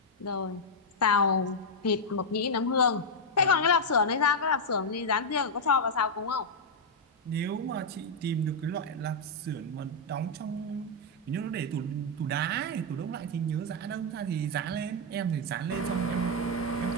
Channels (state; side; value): normal; both; correlation -0.02